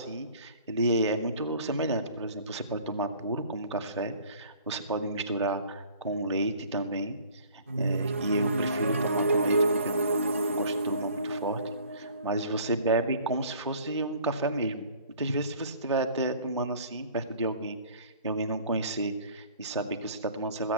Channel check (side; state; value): both; inverted; correlation -0.51